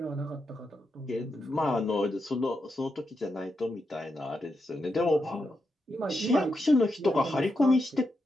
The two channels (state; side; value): normal; both; correlation 0.85